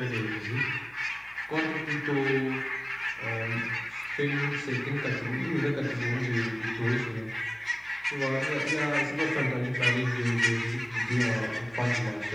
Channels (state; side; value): noise; left; hum, 27 dB below the sound